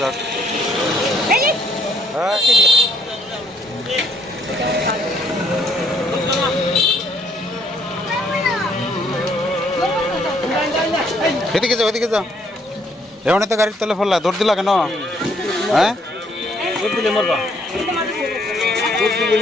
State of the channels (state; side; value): normal; both; correlation 0.67